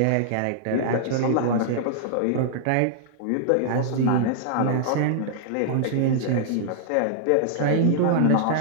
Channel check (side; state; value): both; different; correlation -0.01